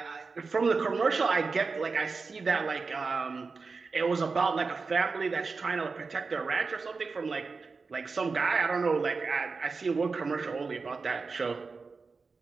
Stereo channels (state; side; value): quieter; left; 4.5 dB